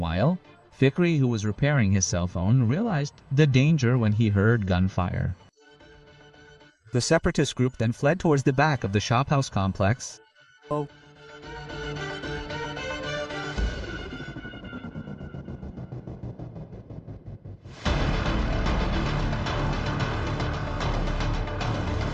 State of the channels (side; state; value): both; identical; correlation 1.00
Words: Fikri, who was repairing his cell phone, realized the danger when he heard gunfire. The separatist group then fled towards the back of the shophouse complex.